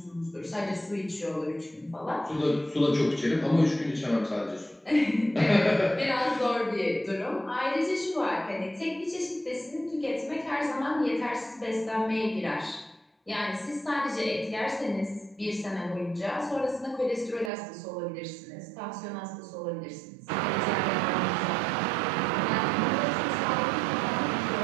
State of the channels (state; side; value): drops out; left; at 17.5 s